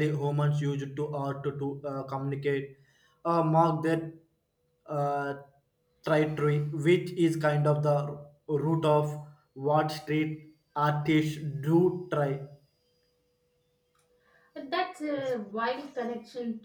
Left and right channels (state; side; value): identical; both; correlation 1.00